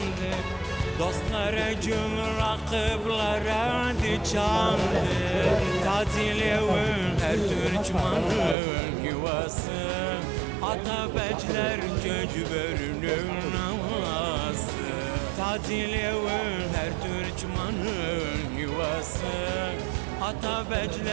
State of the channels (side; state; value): left; drops out; at 8.6 s